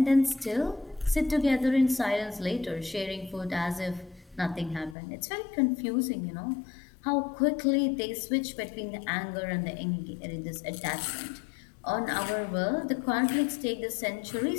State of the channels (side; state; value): right; drops out; at 5.0 s